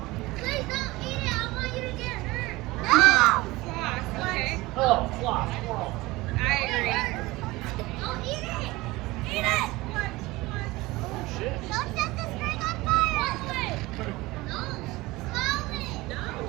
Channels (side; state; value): left; quieter; 20.6 dB